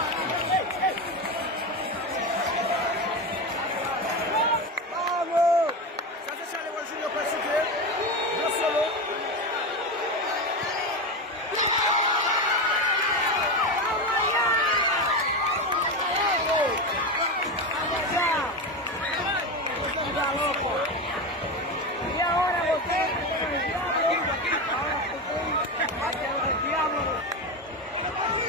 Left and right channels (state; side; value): normal; both; correlation 0.18